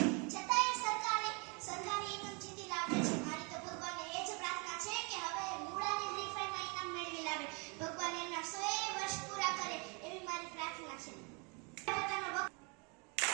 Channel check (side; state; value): left; quieter; 32.5 dB